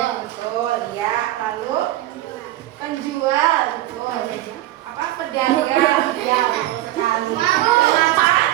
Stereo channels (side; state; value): left; quieter; 15.1 dB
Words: betul. Ya, lalu penjual, betul. Apa pedagang? Ya, betul sekali.